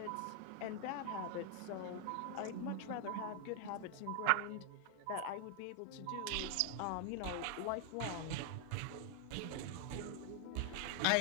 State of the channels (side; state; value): both; different; correlation 0.00